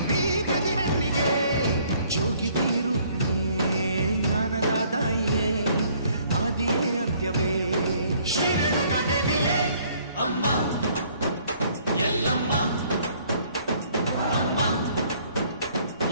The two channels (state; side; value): inverted; both; correlation -0.61